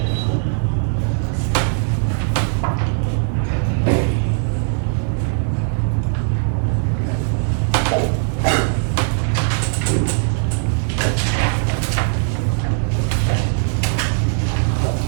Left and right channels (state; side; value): silent; left; 66 dB below the other